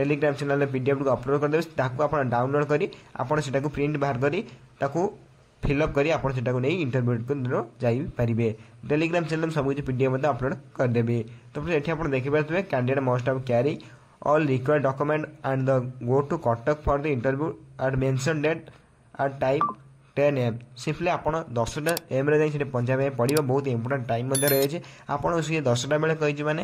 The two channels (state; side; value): identical; both; correlation 1.00